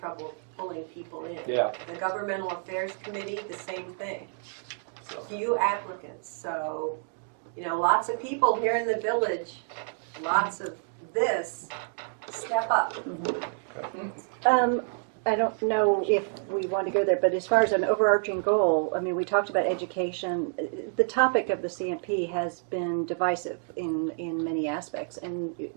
pulling people in. Yeah. The Governmental Affairs Committee, the same thing. So. Few applicants. So, lots of people here in the village, lots of this, step up. I don't know if we want to go there, but as far as an overarching goal, I mean, we talked about education. The topic of the CMP has been divisive in many aspects, and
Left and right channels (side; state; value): left; silent; digital silence